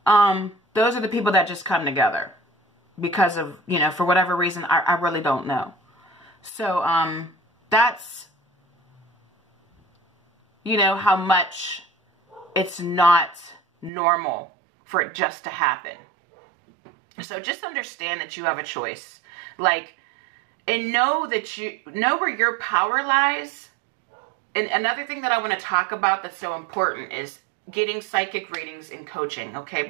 those are the people that just come together because of, you know, for whatever reason, I really don't know. So, that's, you know, how much it's not normal for it just to happen. So just understand that you have a choice. Like, and know that you know where your power lies. And another thing that I want to talk about that's so important is getting psychic readings and coaching. Okay.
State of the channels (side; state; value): left; drops out; at 13.9 s